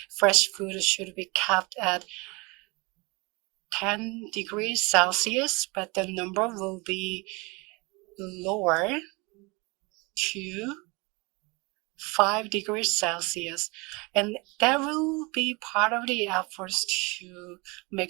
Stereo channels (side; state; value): left; quieter; 27.0 dB